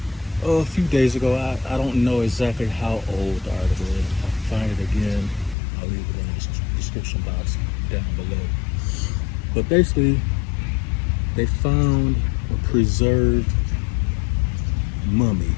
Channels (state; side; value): drops out; right; at 5.6 s